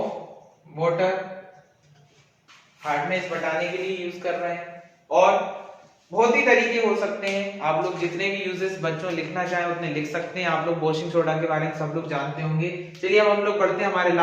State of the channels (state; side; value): identical; both; correlation 1.00